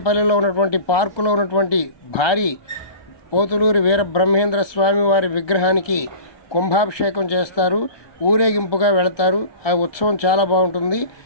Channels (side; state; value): right; late; 1.2 ms